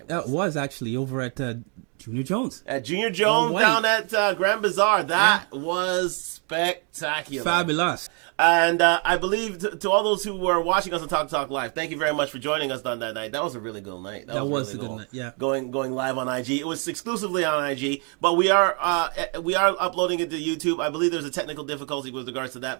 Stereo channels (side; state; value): left; quieter; 37.4 dB